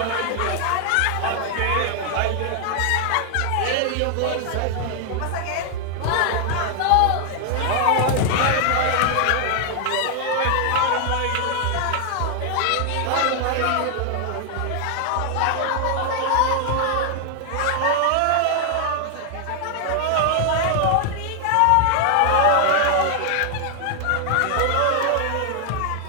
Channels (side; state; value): both; different; correlation 0.00